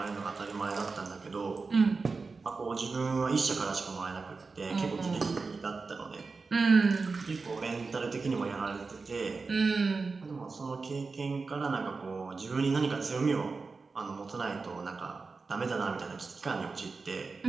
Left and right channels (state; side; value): quieter; left; 4.3 dB